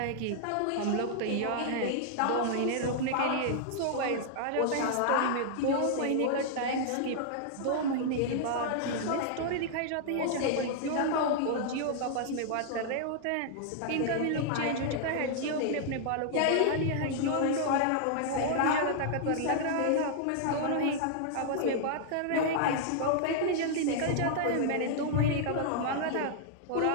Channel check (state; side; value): different; both; correlation -0.01